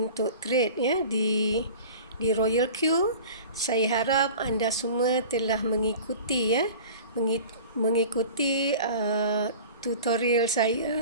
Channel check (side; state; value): both; inverted; correlation -0.39